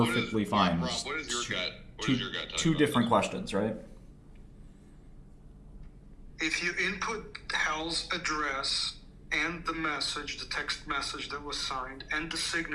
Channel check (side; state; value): both; identical; correlation 1.00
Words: fine. Rob, what is your gut? What two, is your gut? Two different questions, right? if you input Hal's address and the message, the text message that was signed, and the